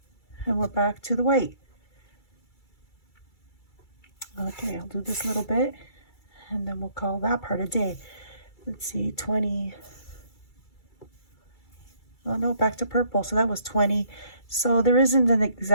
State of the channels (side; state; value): right; late; 2.3 ms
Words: And we're back to the white. Okay, I'll do this little bit, and then we'll call that part a day. Let's see, 20. Oh no, back to purple. So that was 20. So there isn't an